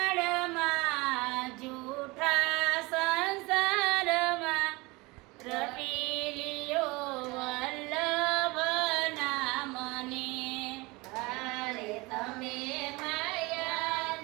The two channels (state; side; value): quieter; left; 24.0 dB